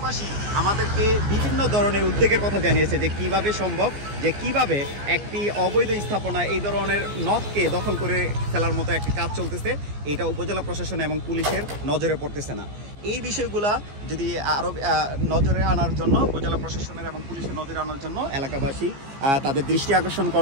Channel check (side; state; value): left; late; 15 ms